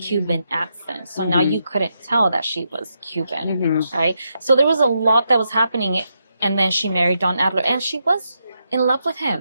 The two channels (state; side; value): inverted; both; correlation -0.83